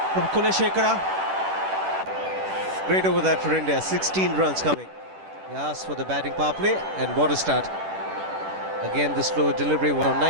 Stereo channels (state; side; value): late; left; 10 ms